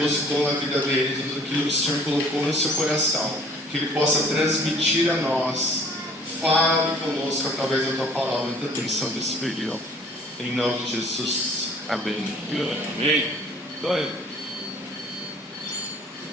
na vida dele, tudo aquilo que o Senhor colocou no seu coração, que ele possa transmitir a nós. Fale conosco através da tua palavra, da atenção desse período. Em nome de Jesus. Amém. Amém. Glória.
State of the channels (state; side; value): normal; both; correlation 0.54